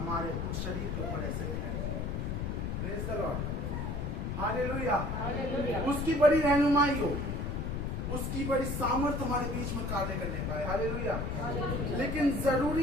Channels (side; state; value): left; noise; rumble, 2 dB below the sound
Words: शरीर के ऊपर ऐसे है। Praise the Lord. हालेलुया। उसकी बड़ी रहनुमाई हो, उसकी बड़ी सामर्थ्य हमारे बीच में कार्य करने पाए। हालेलुया। लेकिन